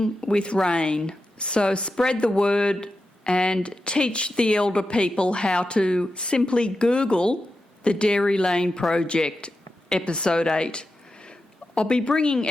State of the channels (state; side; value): normal; both; correlation 0.90